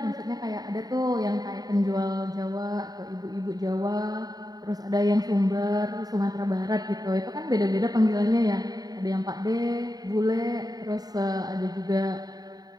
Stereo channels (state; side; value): late; left; 0.18 ms